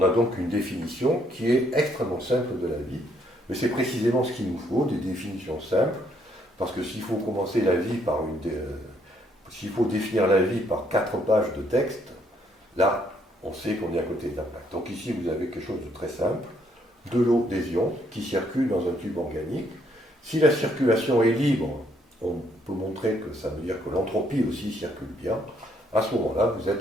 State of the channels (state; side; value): normal; both; correlation 0.70